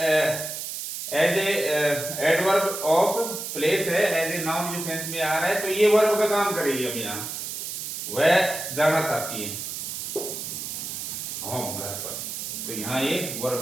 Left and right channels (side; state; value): right; noise; hiss, 6 dB below the sound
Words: as a adverb of place है, एज ए नाउन के सेंस में आ रहा है, तो ये वर्ब का काम करेगी। अब यहाँ वह जाना चाहती है होम, घर पर, तो यहाँ ये वर्ब